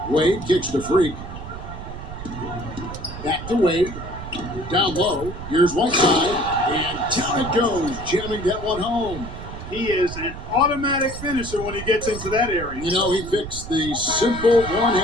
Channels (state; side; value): noise; right; rumble, 10 dB below the sound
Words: Wade kicks to Freak. Back to Wade. Down low. Here's Whiteside. And down it goes. Jamming that one home. He is an automatic finisher when he gets into that area. You know, he fixed the simple